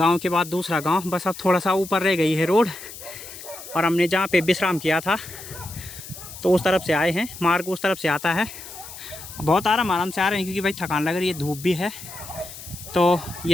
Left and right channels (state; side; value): noise; left; hiss, 14 dB below the sound